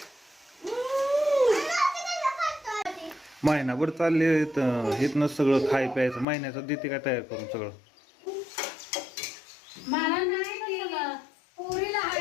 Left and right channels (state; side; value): drops out; right; at 6.2 s